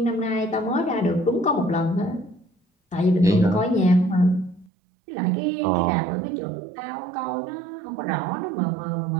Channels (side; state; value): left; drops out; at 4.7 s